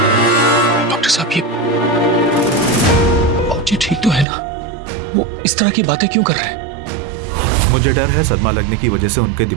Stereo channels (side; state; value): left; drops out; at 4.2 s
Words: डॉक्टर साहब, ये बाबूजी ठीक तो है ना? वो इस तरह की बातें क्यों कर रहे हैं? मुझे डर है सदमा लगने की वजह से उनके